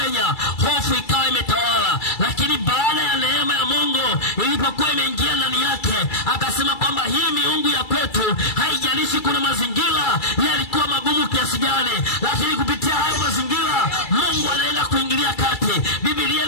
hofu ikawa imetawala. Lakini baada ya neema ya Mungu ilipokuwa imeingia ndani yake, akasema kwamba hii miungu ya kwetu, haijalishi kuna mazingira yalikuwa magumu kiasi gani, lakini kupitia hayo mazingira Mungu anaenda kuingilia kati. Biblia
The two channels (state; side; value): late; right; 2.3 ms